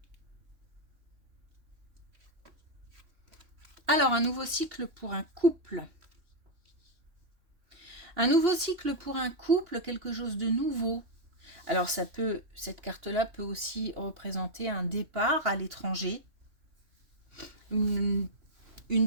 Alors, un nouveau cycle pour un couple. Un nouveau cycle pour un couple, quelque chose de nouveau. Alors, cette carte-là peut aussi représenter un départ à l'étranger. Alors,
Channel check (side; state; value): left; late; 2.9 ms